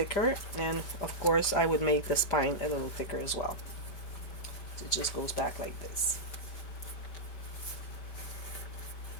and of course, I would make the spine a little thicker as well. So it just goes back like this.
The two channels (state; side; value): late; right; 5.1 ms